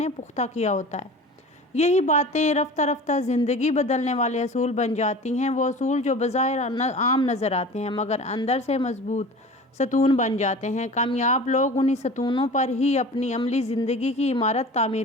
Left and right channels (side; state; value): both; normal; correlation 0.38